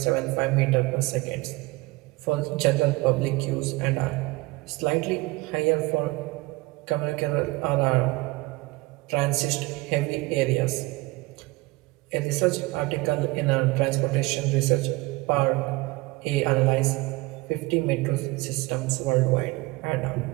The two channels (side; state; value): left; quieter; 22.4 dB